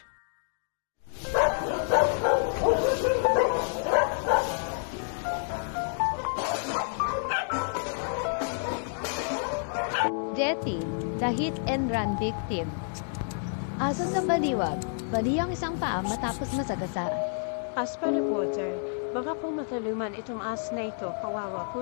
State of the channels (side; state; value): right; silent; digital silence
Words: Jetty, the hit and run victim. Ason sa baliwag, bali ang isang paa matapos masagasa. As per reporter, baka po mataluman itong as na ito, kawawa